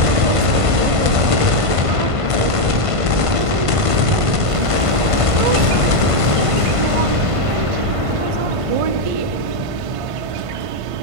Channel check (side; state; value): left; late; 1.5 ms